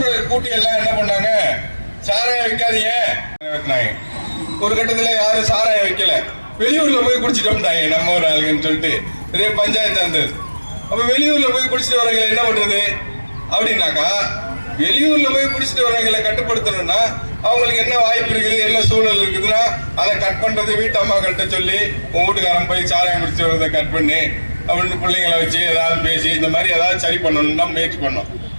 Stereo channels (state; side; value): inverted; both; correlation -1.00